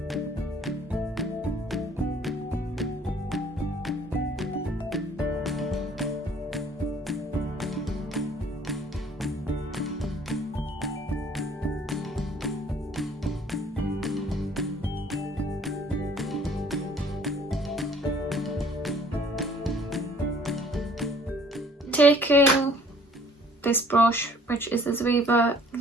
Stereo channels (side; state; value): both; normal; correlation 0.56